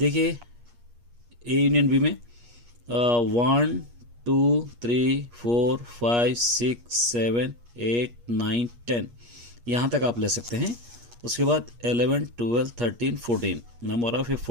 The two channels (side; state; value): left; late; 8.4 ms